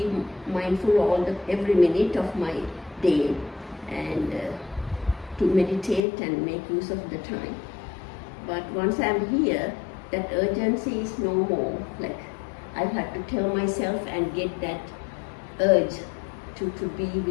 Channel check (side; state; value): right; drops out; at 6.0 s